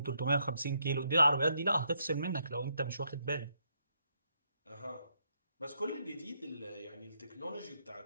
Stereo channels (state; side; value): inverted; both; correlation -0.76